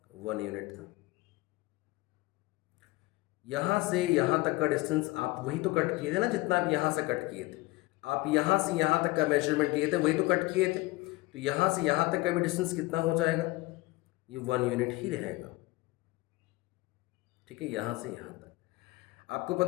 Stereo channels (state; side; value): quieter; right; 20.8 dB